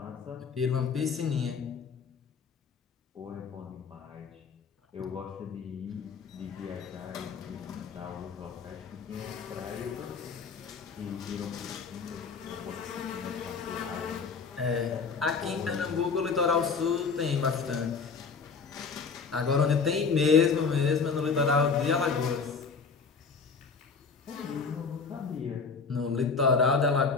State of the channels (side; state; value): right; quieter; 5.2 dB